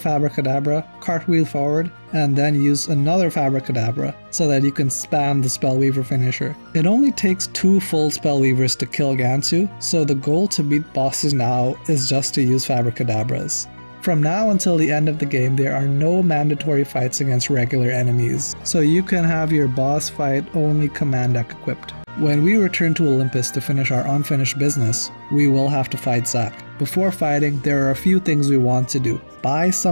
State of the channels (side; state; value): both; inverted; correlation -1.00